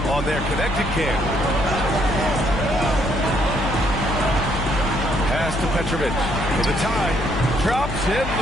on their connected cam. Pass to Petrovic for the tie. Drops in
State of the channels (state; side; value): noise; left; hum, 7 dB below the sound